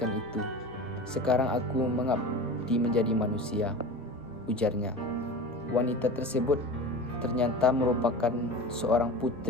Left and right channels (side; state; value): both; normal; correlation 0.33